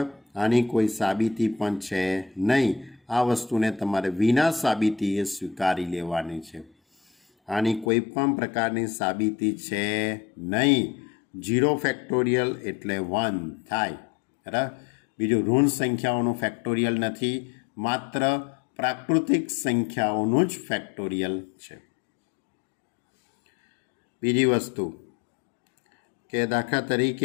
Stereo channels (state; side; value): drops out; right; at 7.9 s